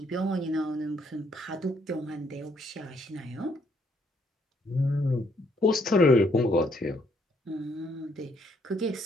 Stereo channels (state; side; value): normal; both; correlation 0.70